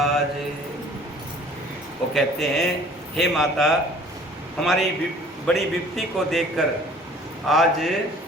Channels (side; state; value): both; normal; correlation 0.51